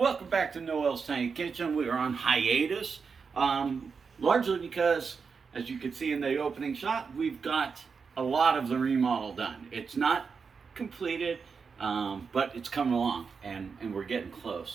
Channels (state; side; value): quieter; left; 5.5 dB